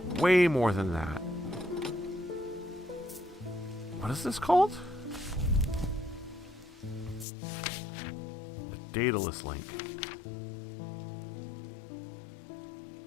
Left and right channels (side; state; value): right; drops out; at 7.2 s